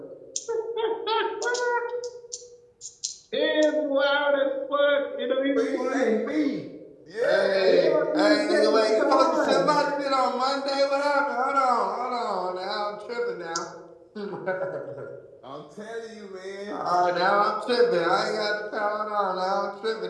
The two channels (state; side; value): identical; both; correlation 1.00